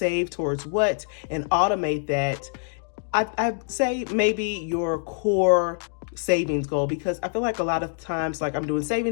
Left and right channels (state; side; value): silent; right; 62 dB below the other